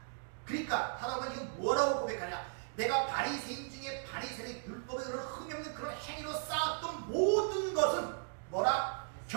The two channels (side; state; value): left; silent; digital silence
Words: 그러니까 사도 바울이 뭐라고 고백하냐? 내가 바리새인 중에 바리새인 율법에 그런 흠이 없는 그런 행위로 쌓았던 모든 것은 뭐라?